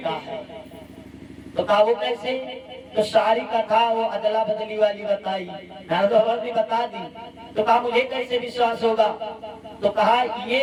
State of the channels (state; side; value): identical; both; correlation 1.00